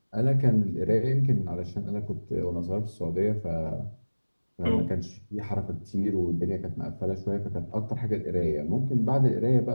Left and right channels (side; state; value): both; inverted; correlation -1.00